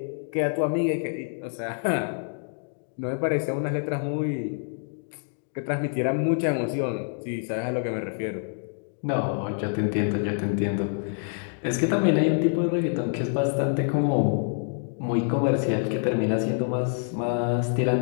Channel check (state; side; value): silent; right; digital silence